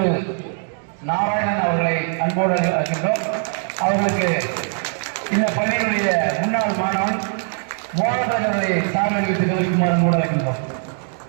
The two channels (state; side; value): silent; left; 61 dB below the other